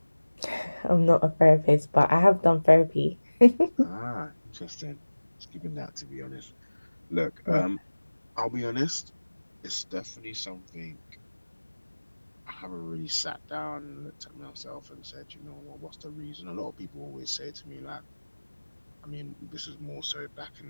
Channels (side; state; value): both; inverted; correlation -1.00